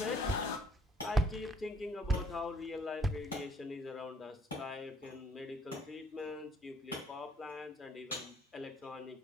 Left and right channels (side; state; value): both; normal; correlation 0.63